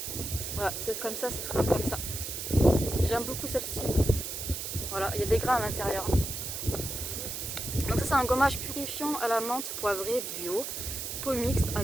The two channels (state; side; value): noise; right; hiss, 5 dB below the sound